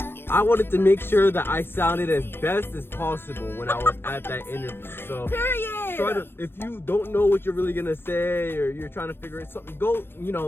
I wanted to make sure that I sounded as best as possible when I was at that interview. So Period. if you don't know what you're really gonna say, or you're trying to figure out something, go,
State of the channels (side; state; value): right; late; 0.10 ms